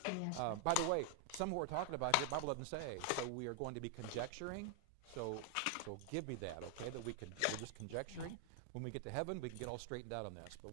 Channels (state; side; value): different; both; correlation 0.00